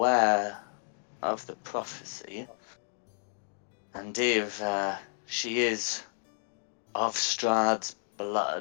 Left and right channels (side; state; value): right; silent; digital silence